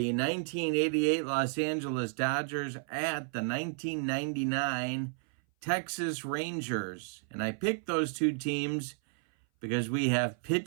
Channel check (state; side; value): silent; left; 56 dB below the other